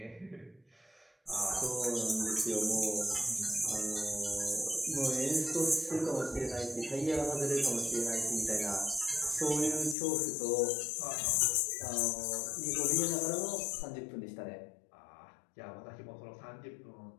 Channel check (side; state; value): right; drops out; at 10.0 s